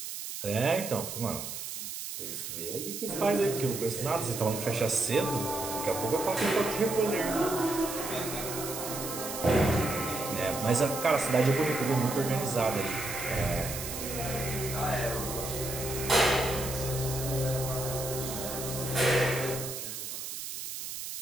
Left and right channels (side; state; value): right; noise; hiss, 7 dB below the sound